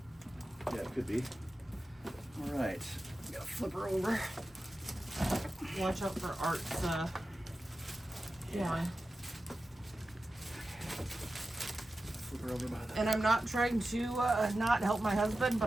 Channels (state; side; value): normal; both; correlation 0.93